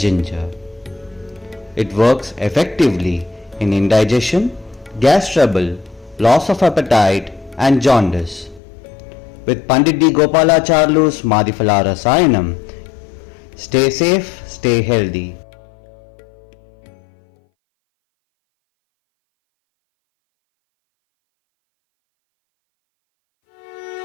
It works effectively in indigestion, gas trouble, loss of appetite and jaundice. With Pandit D. Gopalacharlu's Madhifala Rasayanam, stay safe, stay healthy.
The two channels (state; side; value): drops out; right; at 8.6 s